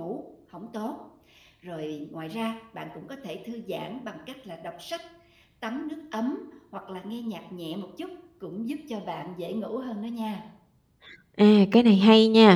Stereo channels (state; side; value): identical; both; correlation 1.00